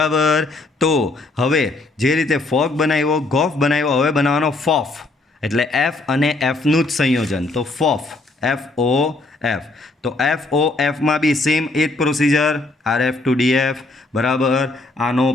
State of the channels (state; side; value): quieter; right; 3.1 dB